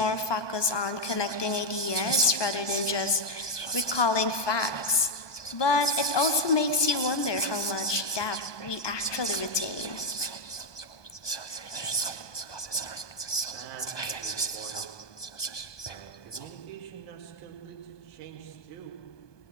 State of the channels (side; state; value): right; late; 1.2 ms